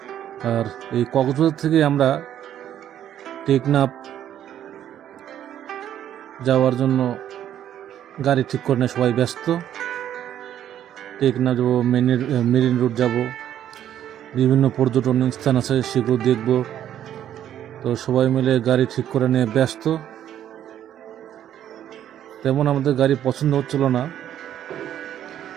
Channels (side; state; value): left; quieter; 10.8 dB